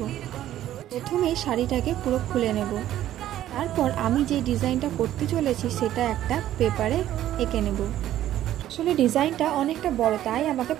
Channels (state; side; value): quieter; left; 12.7 dB